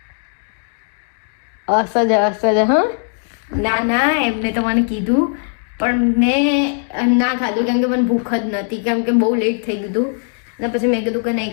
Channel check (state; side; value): silent; right; 57 dB below the other